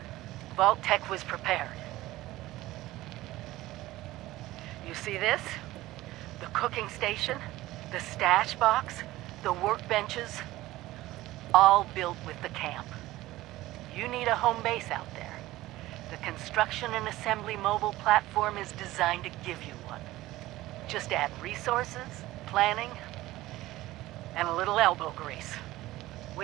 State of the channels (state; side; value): quieter; left; 17.0 dB